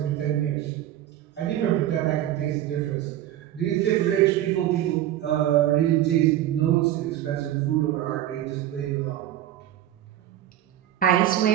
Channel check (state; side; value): quieter; left; 12.6 dB